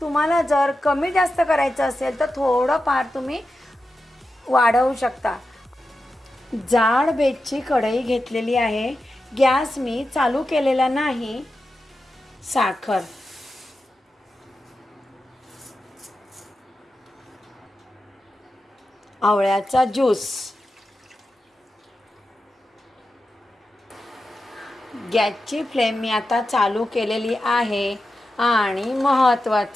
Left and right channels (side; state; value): both; normal; correlation 0.91